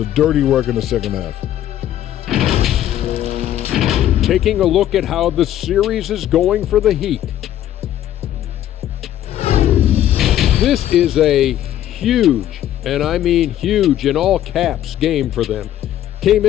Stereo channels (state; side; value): quieter; right; 12.0 dB